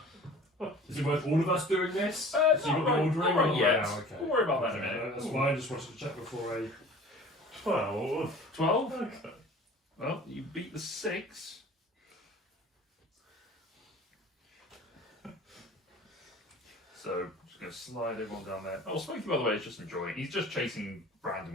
job. Is it worth all of us doing this? So you've got the ordering? Not right or- yet. Oh, okay. We'll worry about that in a minute. That's why I just wanted to check before I... 12. 12? Okay. Well, you beat the 6. So, just going to slide everyone down there. Oh, Smokey, by the way, is just enjoying. He's just chasing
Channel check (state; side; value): normal; both; correlation 0.44